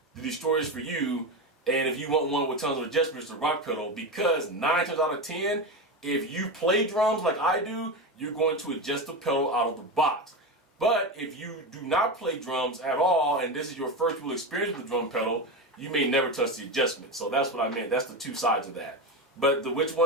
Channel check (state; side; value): normal; both; correlation 0.18